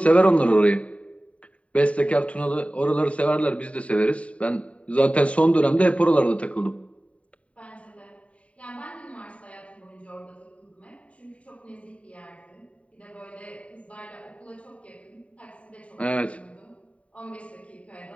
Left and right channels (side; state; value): right; late; 0.065 ms